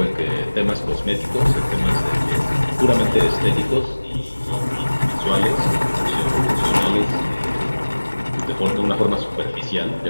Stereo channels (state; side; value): inverted; both; correlation -1.00